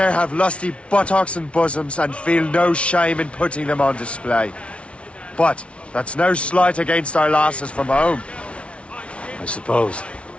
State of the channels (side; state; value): right; late; 0.061 ms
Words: have lusty buttocks and bosoms and feel no shame in putting them on display. But that's no slight against our lasses from home. I suppose.